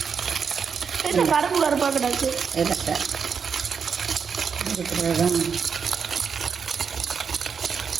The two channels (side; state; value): left; quieter; 6.3 dB